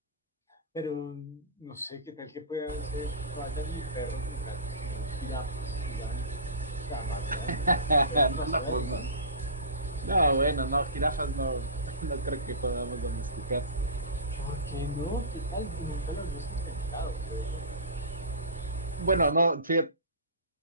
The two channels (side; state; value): both; inverted; correlation -0.33